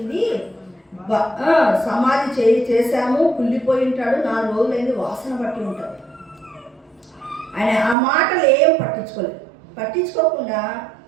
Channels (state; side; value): drops out; left; at 8.0 s